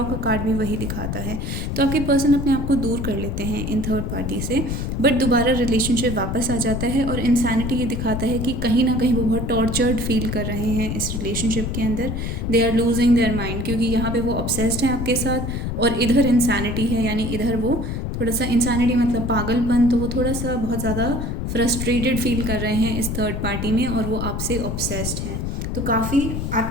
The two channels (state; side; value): noise; left; rumble, 3 dB below the sound